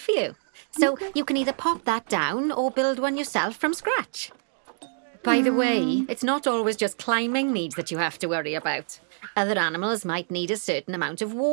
you. So Okay. you can either pop that down or build one yourself from scratch. By the way, it's not always just climbing needs that you have to worry about. Other animals might need a certain amount of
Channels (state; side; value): silent; left; 61 dB below the other